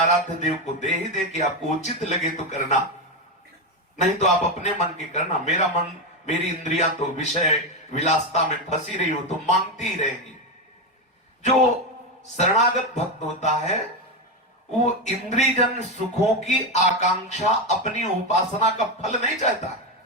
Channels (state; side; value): normal; both; correlation 0.11